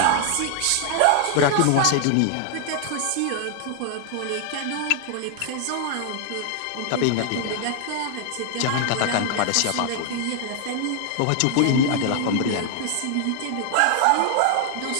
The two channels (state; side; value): different; both; correlation 0.00